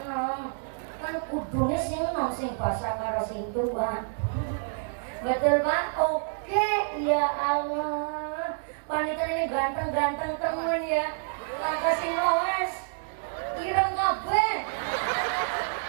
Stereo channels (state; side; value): silent; left; digital silence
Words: enom. Kan kudune sing enom sing basa karo sing tua. Betul Pak? Oke, ya Allah. Panitia ini ganteng-ganteng temen ya. Langkah sing loes. Ireng kabeh.